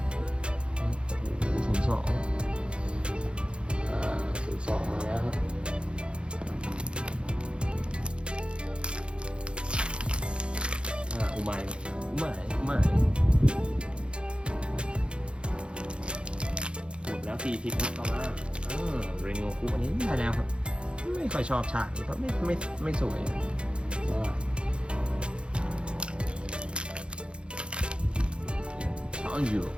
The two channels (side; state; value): left; late; 0.055 ms